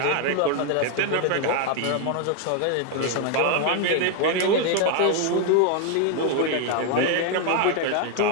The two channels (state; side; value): different; both; correlation 0.01